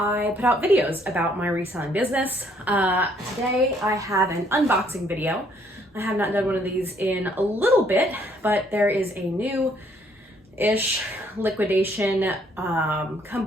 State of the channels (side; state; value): both; normal; correlation 0.66